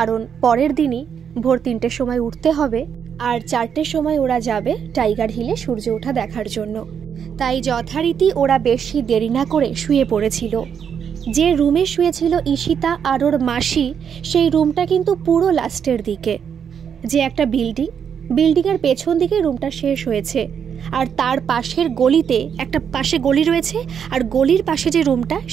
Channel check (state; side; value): quieter; left; 7.7 dB